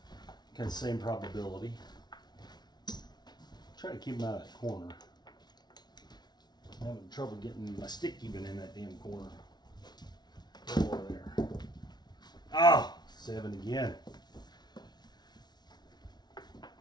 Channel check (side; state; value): right; late; 0.20 ms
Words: Kind of same probability. Try to keep him out of that corner. I'm having trouble getting my stick even in that damn corner. Over there. Oh, 7 again.